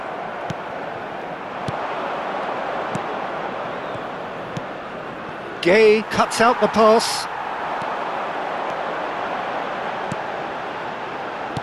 Gay cuts out the pass.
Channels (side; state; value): both; identical; correlation 1.00